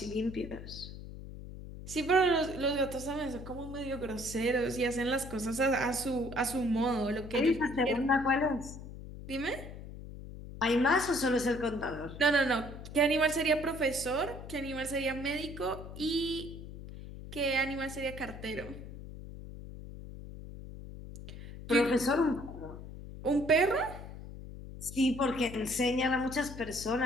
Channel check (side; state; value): left; noise; hum, 12 dB below the sound